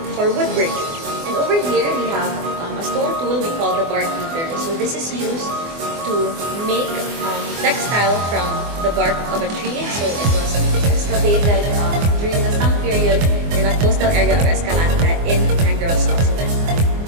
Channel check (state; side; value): late; left; 24 ms